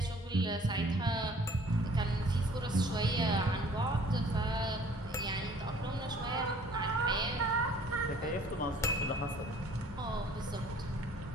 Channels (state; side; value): normal; both; correlation 0.54